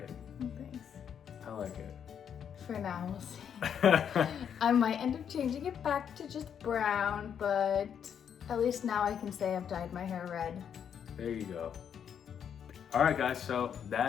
Thanks. I like it. For now, we'll see. I might end up changing it back to just brown, but at least now I can say I've dyed my hair red. There you go. All right guys, so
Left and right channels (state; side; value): quieter; right; 8.2 dB